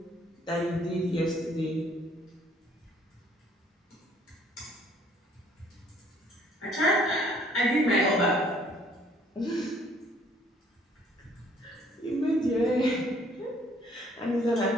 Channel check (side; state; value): both; normal; correlation 0.61